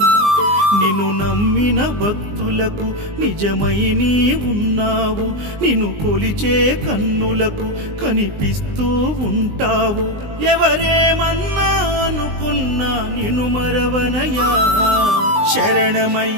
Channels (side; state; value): left; late; 20 ms